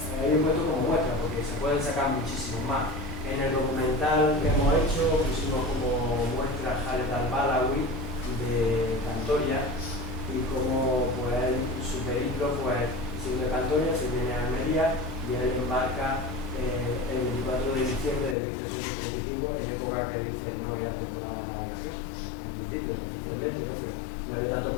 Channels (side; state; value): right; drops out; at 18.4 s